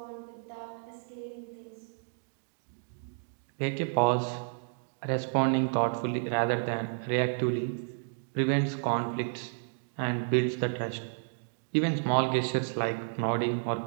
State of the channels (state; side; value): silent; left; digital silence